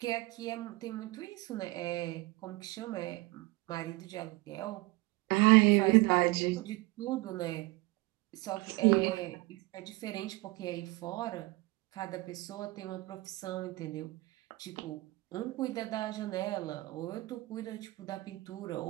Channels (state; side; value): quieter; left; 21.6 dB